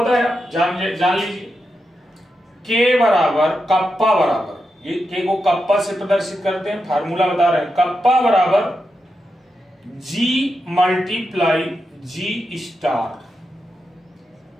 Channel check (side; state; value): both; normal; correlation 0.87